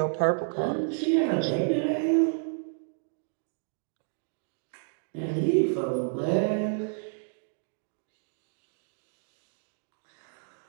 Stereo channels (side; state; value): left; silent; digital silence